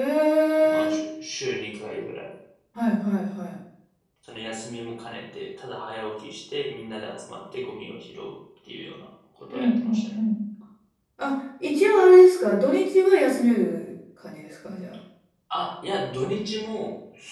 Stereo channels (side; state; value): both; identical; correlation 1.00